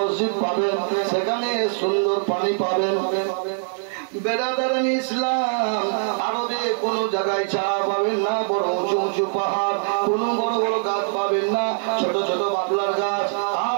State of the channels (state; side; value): silent; left; digital silence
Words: পাবেন, সেখানে সুন্দর পানি পাবেন। বেরাদারান ইসলাম, আরবে কোন জায়গায় ছায়া পাবেন না, বড় উঁচু উঁচু পাহাড়, কোন বড় বড় গাছ পাবেন না, ছোট ছোট বাবলার গাছ